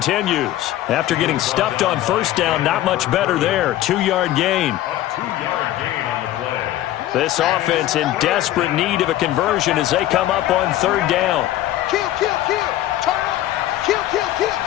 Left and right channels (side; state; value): right; quieter; 14.0 dB